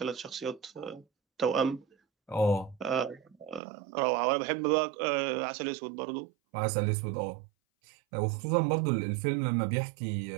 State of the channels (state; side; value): drops out; left; at 3.6 s